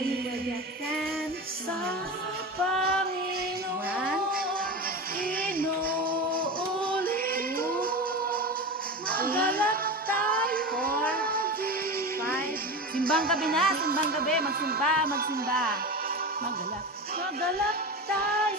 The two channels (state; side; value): normal; both; correlation 0.25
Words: sa Panginoon, inuulit ko, magalak tayo. 4, 5, simbang gabi na, simbang gabi, magsimba, magalak